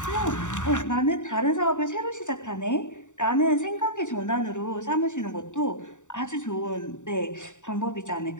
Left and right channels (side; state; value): right; late; 0.86 ms